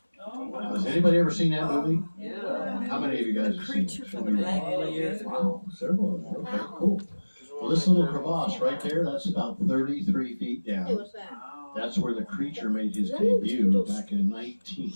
Now, has anybody ever seen that movie? Yeah. How many of you guys have seen it? Wow. Several of them. Okay, cool. Well, this little crevasse right there, that's about 33 feet down. That's where the Creature made his debut back in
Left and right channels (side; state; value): both; inverted; correlation -1.00